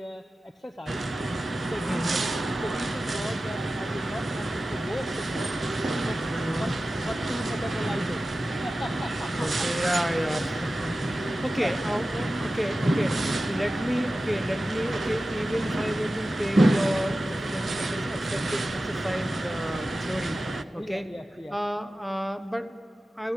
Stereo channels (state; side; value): normal; both; correlation 0.94